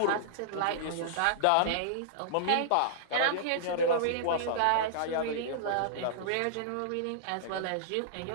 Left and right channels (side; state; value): both; different; correlation -0.02